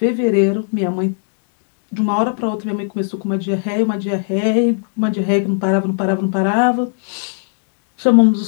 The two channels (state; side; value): silent; right; digital silence